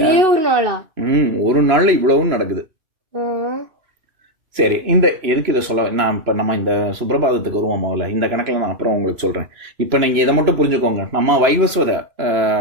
ஒரு நாள்ல இவ்வளவும் நடக்குது. சரி, எதுக்கு இதை சொல்ல நான் இப்ப நம்ம இந்த சுப்ரபாதத்துக்கு வருவோம். முதல்ல இந்த கணக்குல நான் அப்புறம் உங்களுக்கு சொல்றேன். இப்ப நீங்க இதை மட்டும் புரிஞ்சுக்கோங்க. நம்ம வைவஸ்வத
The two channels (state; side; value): late; left; 2.9 ms